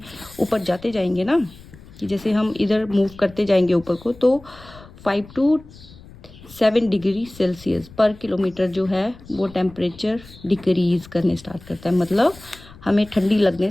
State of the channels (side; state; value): left; noise; rumble, 21 dB below the sound